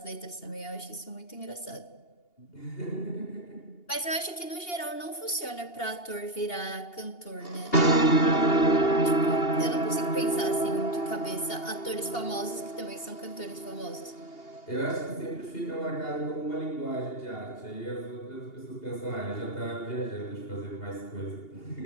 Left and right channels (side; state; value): right; late; 2.8 ms